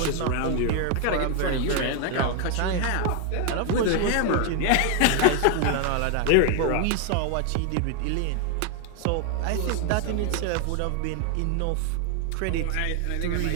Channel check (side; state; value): both; different; correlation 0.00